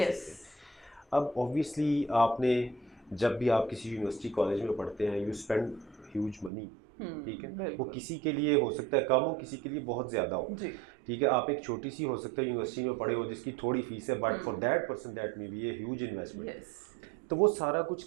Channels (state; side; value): drops out; left; at 6.5 s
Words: हैं। अब ऑब्वियसली आपने जब भी आप किसी यूनिवर्सिटी कॉलेज में पढ़ते हैं, यू स्पेंड ह्यूज मनी, ठीक है। वो किसी के लिए हो सकता है कम हो, किसी के लिए बहुत ज़्यादा हो, ठीक है। आप एक छोटी सी हो सकता है यूनिवर्सिटी में पढ़े हो जिसकी थोड़ी फीस है, but for that person that may be a huge investment. तो वो सारा कुछ